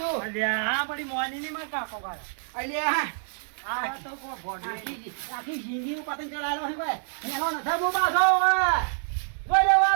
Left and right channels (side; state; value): left; silent; digital silence